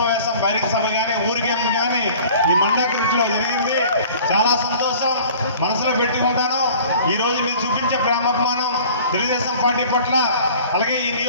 బహిరంగ సభ కానీ ఊరికేం కానీ ఈ మండాకృతిలో జరిగింది. చాలా సంతోషం, మనసులో పెట్టుకుంటాను. ఈరోజు మీరు చూపించే ప్రేమాభిమానం తెలుగుదేశం పార్టీ పట్ల, అలాగే ఈ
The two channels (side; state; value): both; inverted; correlation -0.47